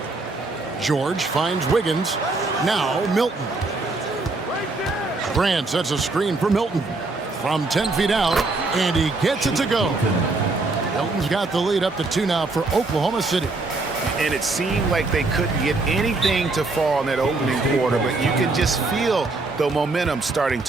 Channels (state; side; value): quieter; left; 3.4 dB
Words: George finds Wiggins. Now Milton. Grant sets a screen for Milton from 10 feet out, and he gets it to go. Milton's got the lead up to 2 now for Oklahoma City. And it seemed like they couldn't get anything to fall in that opening quarter, but you could just feel the momentum starting